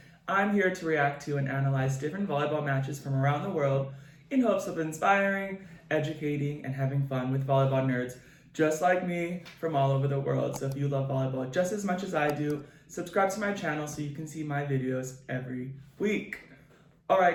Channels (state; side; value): identical; both; correlation 1.00